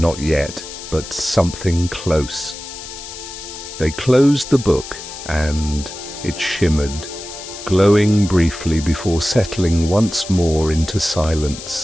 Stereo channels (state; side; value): noise; left; hiss, 12 dB below the sound